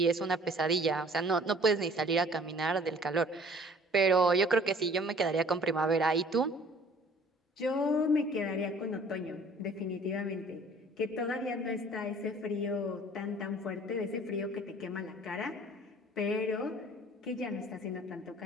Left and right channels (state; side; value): normal; both; correlation 0.52